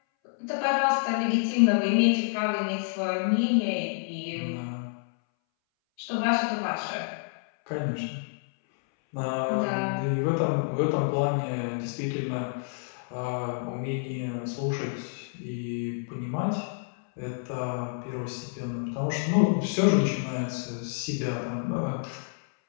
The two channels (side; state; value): right; silent; 59 dB below the other